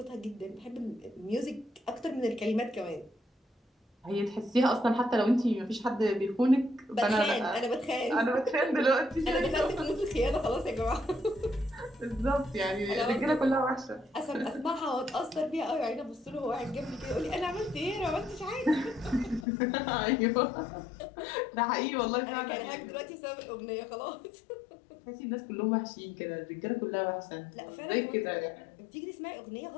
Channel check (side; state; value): right; drops out; at 19.5 s